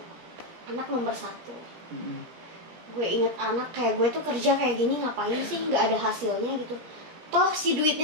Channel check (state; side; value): late; left; 17 ms